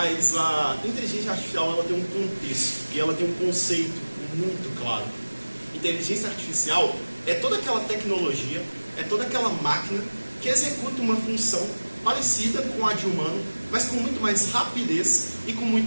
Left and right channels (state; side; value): inverted; both; correlation -1.00